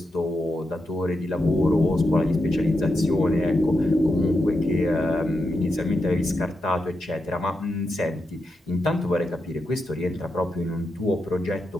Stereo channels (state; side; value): normal; both; correlation 0.86